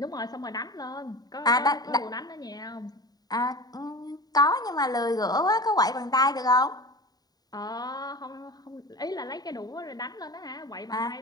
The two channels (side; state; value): right; late; 0.19 ms